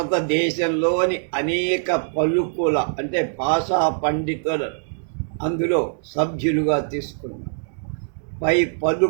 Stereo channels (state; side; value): silent; left; digital silence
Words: అనేక పలుకుల అంటే భాషా పండితులు అందులో సభ్యులుగా తీసుకున్నారు. పై